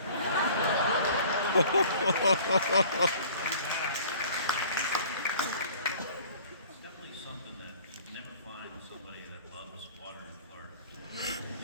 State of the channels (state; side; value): inverted; both; correlation -0.49